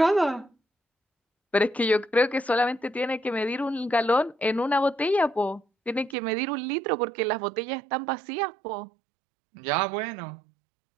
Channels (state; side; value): drops out; left; at 6.2 s